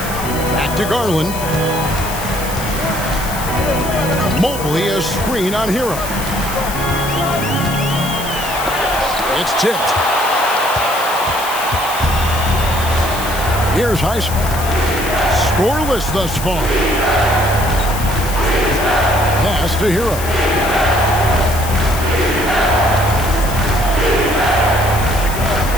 Back to Garland. Mobley a screen on Hero. It's tipped. Here's Highsmith. Scoreless thus far. Pass to Hero.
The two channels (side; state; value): left; noise; hiss, 10 dB below the sound